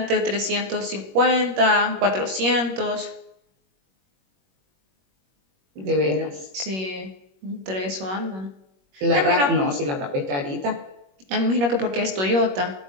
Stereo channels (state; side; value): late; left; 21 ms